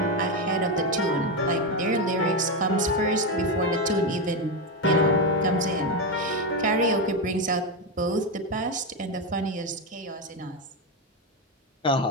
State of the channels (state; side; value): normal; both; correlation 0.09